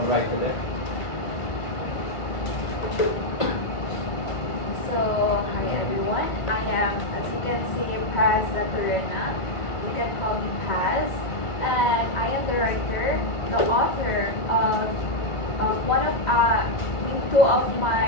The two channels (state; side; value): late; right; 1.5 ms